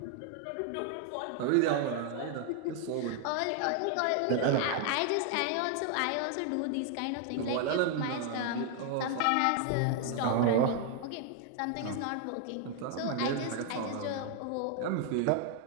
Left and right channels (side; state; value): both; different; correlation 0.00